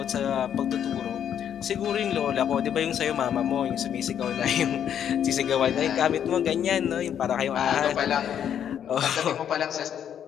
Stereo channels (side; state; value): right; quieter; 9.2 dB